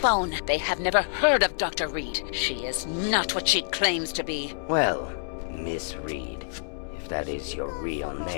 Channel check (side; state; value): right; silent; 60 dB below the other